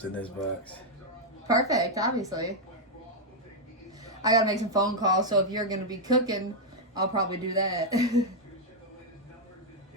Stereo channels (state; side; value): normal; both; correlation -0.01